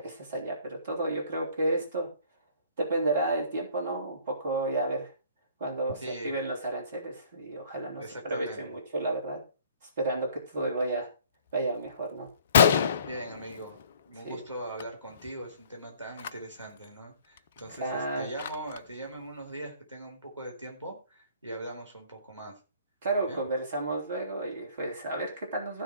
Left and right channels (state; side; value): inverted; both; correlation -0.55